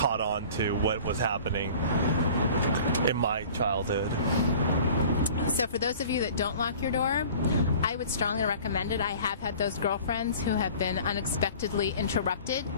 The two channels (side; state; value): both; inverted; correlation -0.45